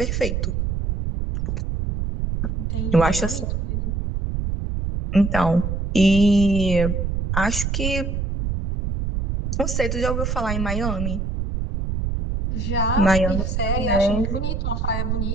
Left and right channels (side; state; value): right; noise; rumble, 1 dB below the sound